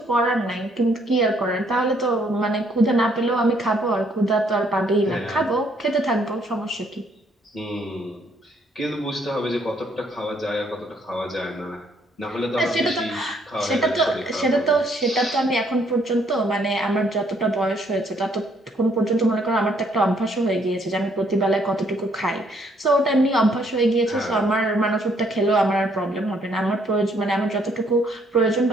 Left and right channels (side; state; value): both; normal; correlation 0.68